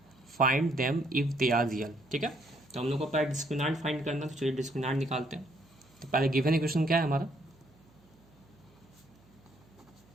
find them if they are real. ठीक है, तो हम लोग को पहले डिस्क्रिमिनेंट फाइंड करना, तो चलिए डिस्क्रिमिनेंट निकालते हैं। तो पहले गिवन इक्वेशन क्या है हमारा,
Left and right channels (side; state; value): right; noise; hum, 30 dB below the sound